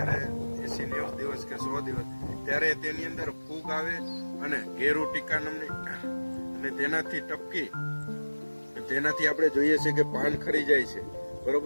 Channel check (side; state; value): both; inverted; correlation -1.00